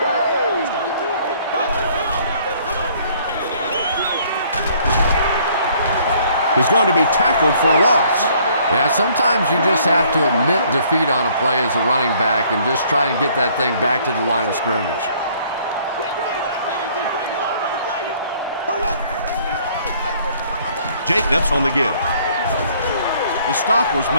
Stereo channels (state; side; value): inverted; both; correlation -0.60